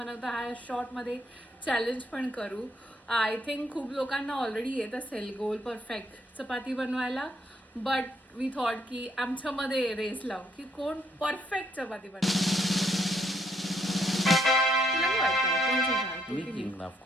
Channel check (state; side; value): normal; both; correlation 0.72